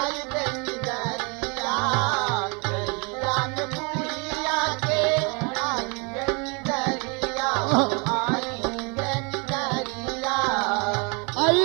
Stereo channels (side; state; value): left; quieter; 31.9 dB